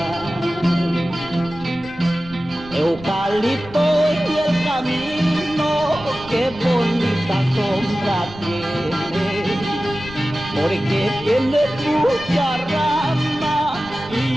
Eucalipto y el camino, qué bonita sombra tiene, porque tiene mucha rama y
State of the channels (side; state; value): left; noise; rumble, 19 dB below the sound